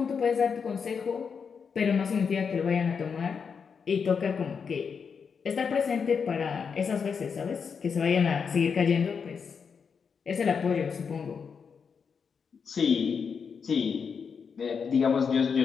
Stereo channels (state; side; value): quieter; right; 6.1 dB